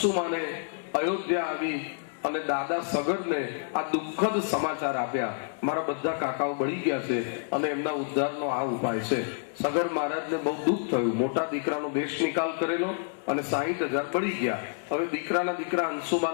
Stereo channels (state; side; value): silent; right; 59 dB below the other